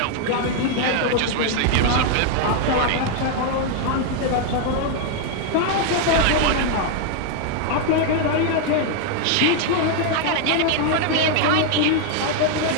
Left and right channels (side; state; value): both; different; correlation 0.00